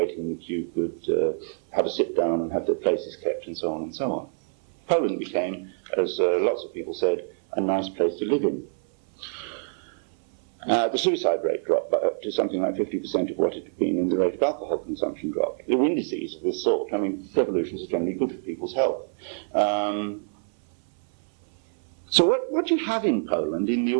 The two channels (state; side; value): silent; left; 57 dB below the other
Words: in the queue could have a sit down and have their places kept, and so on and so on. Poland became, as lots of people said, a nice place to live in. The suicide rate dropped to something like 50% of what it had been, and the rate of alcohol consumption dropped. There were indices of this sort. I mean, revolutions are generally good for people's health. So what you have in Poland in the